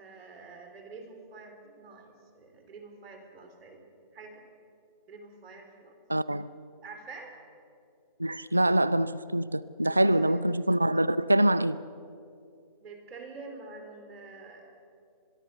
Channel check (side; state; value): both; inverted; correlation -0.96